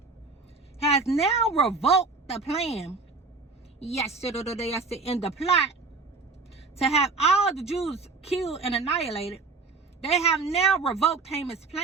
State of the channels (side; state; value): left; quieter; 4.1 dB